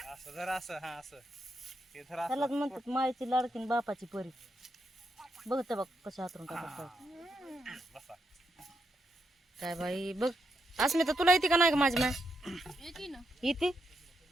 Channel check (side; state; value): both; normal; correlation 0.81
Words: त्यालाच म्हणतात मायची लाडकीन बापाची परी. बघते बघ कशा हातरून टाकत. काय बाई बघ. अस्मिता तुला येते का नाही ग माझी माय? येते